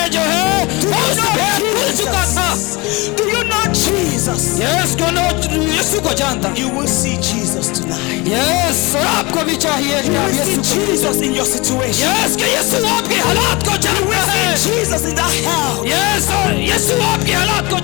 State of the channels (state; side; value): quieter; right; 24.7 dB